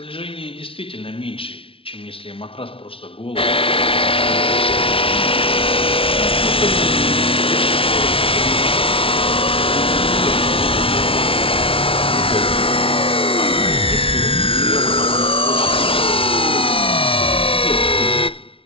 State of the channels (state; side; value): late; right; 0.26 ms